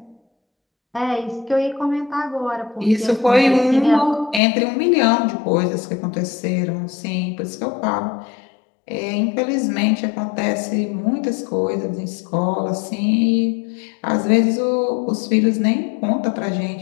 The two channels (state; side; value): drops out; right; at 4.4 s